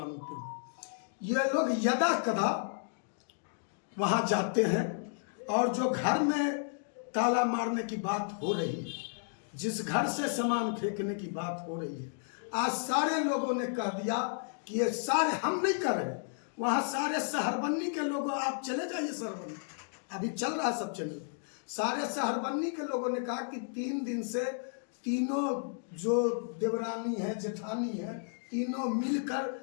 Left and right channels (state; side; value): silent; right; digital silence